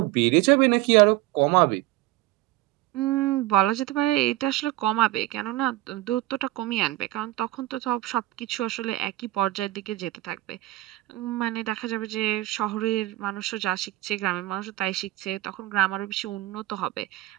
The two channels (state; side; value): quieter; left; 17.2 dB